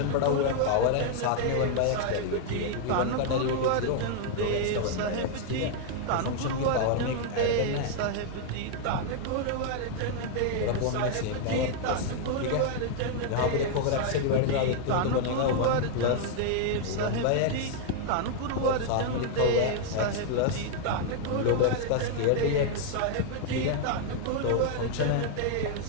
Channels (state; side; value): different; both; correlation 0.00